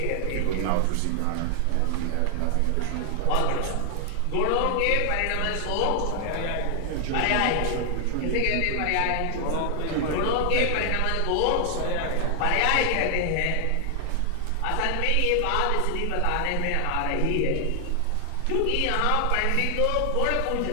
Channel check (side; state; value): both; different; correlation 0.00